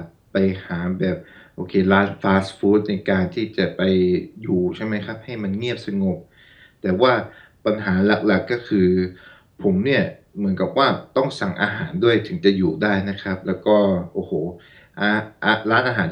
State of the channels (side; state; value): both; identical; correlation 1.00